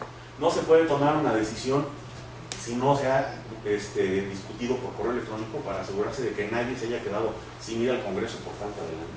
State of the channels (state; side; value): identical; both; correlation 1.00